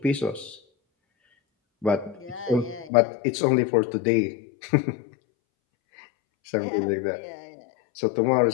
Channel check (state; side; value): drops out; right; at 2.9 s